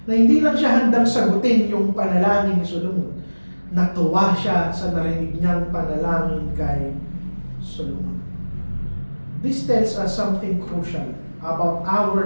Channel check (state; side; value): inverted; both; correlation -1.00